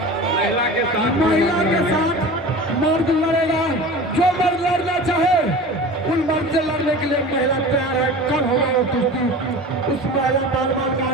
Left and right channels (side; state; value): both; normal; correlation 0.35